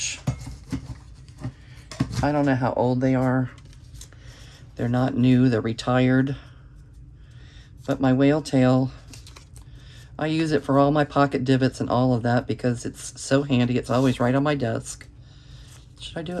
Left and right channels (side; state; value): both; identical; correlation 1.00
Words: I don't know how old they are. They're not new, they're retired. But my whale tail, I use it for all my pocket divots and all of that because it's so handy. It's always right on my desk. Should I do